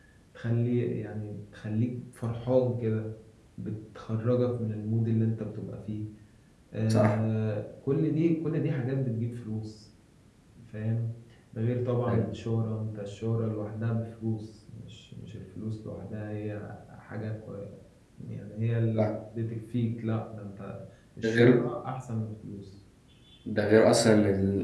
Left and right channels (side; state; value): both; identical; correlation 1.00